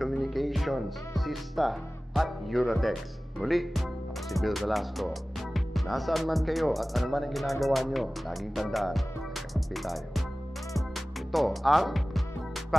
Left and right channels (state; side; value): normal; both; correlation 0.97